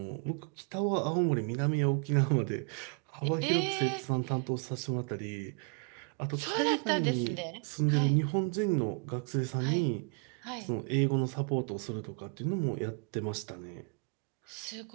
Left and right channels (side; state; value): left; quieter; 37.3 dB